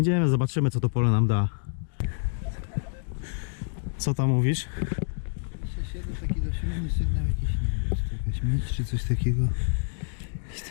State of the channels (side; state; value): right; silent; digital silence